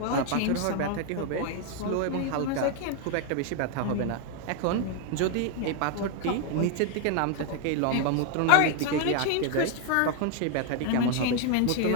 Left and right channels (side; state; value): both; different; correlation 0.01